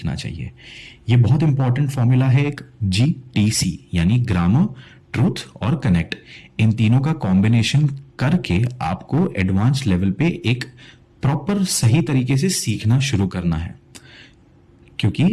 चाहिए, ये बहुत इंपॉर्टेंट फॉर्मूला है एक GTC, यानी ग्रामर, ट्रूथ और कनेक्ट। इन तीनों का कॉम्बिनेशन करके आपको एडवांस लेवल पे एक प्रॉपर सही तरीके से सीखना शुरू करना है।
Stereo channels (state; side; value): identical; both; correlation 1.00